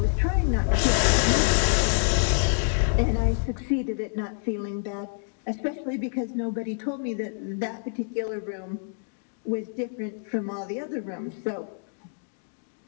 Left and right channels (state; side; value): silent; right; digital silence